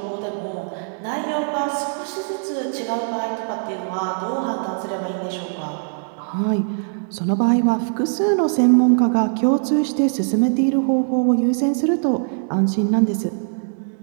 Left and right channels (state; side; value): silent; left; digital silence